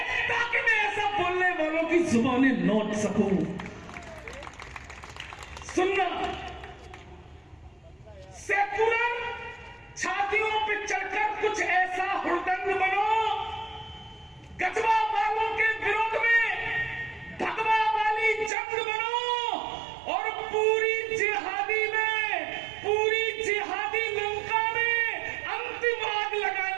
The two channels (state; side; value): drops out; left; at 18.5 s